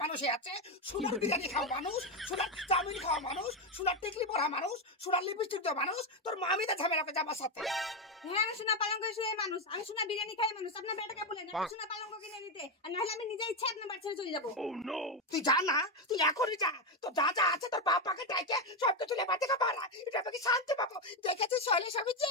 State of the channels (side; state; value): both; normal; correlation 0.08